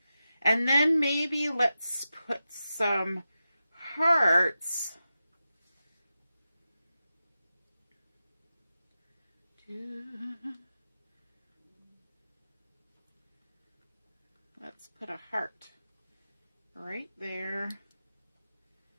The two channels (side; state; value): both; inverted; correlation -0.92